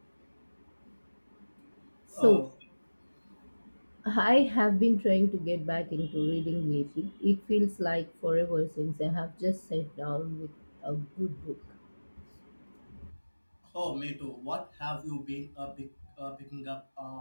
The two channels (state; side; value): inverted; both; correlation -1.00